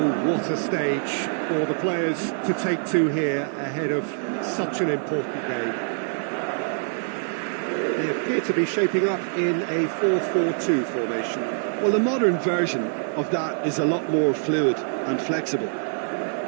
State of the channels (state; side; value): silent; left; digital silence